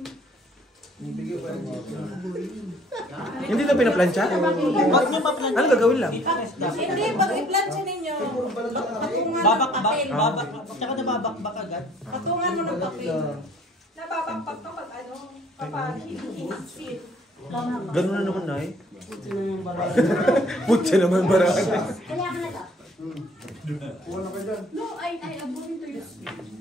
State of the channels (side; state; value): both; normal; correlation 0.57